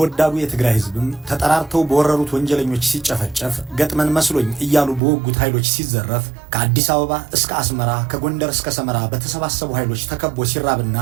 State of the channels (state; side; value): drops out; left; at 5.0 s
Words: ወዳዱ የትግራይ ሕዝብም ተጠራርተው በወረሩት ወንጀለኞች ሲጨፈጨፍ ገጥመን መስሎኝ እያሉ በወጉት ኃይሎች ሲዘረፍ ከአዲስ አበባ እስከ አስመራ ከጎንደር እስከ ሰመራ በተሰባሰቡ ኃይሎች ተከቦ ሲራብና